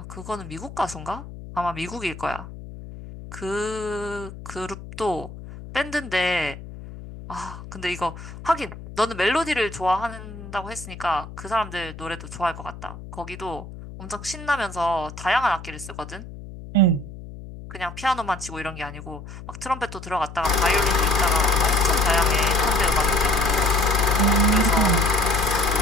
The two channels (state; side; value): noise; left; hum, 13 dB below the sound